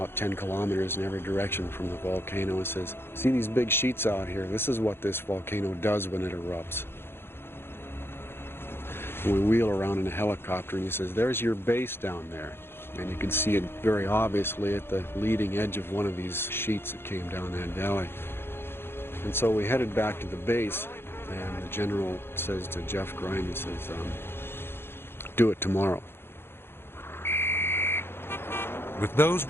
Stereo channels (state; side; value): late; right; 0.11 ms